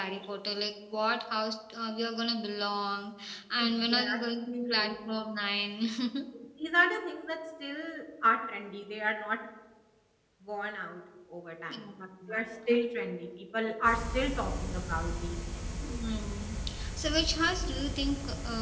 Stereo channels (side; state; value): both; identical; correlation 1.00